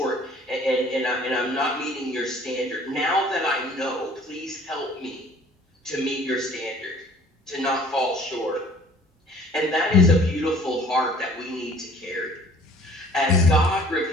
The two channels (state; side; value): normal; both; correlation 0.53